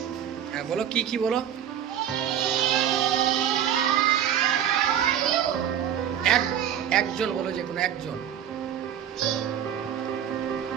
হ্যাঁ বলো, কি কি বলো? একজন বলো, যে কোনো একজন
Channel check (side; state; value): left; quieter; 9.7 dB